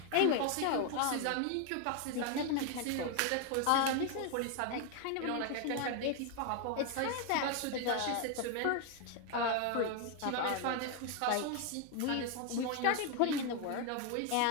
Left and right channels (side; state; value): both; different; correlation 0.01